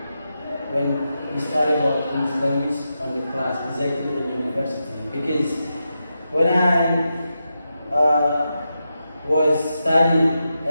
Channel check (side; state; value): both; inverted; correlation -0.88